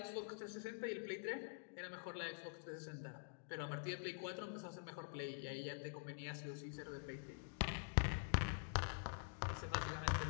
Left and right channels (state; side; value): silent; right; digital silence